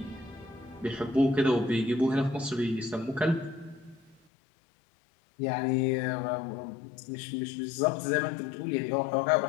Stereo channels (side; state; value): right; drops out; at 4.2 s